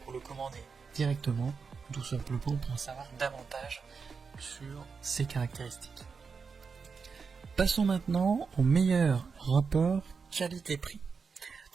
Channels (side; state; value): left; quieter; 5.4 dB